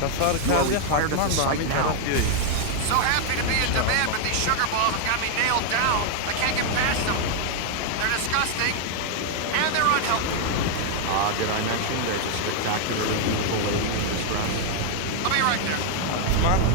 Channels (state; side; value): different; both; correlation 0.00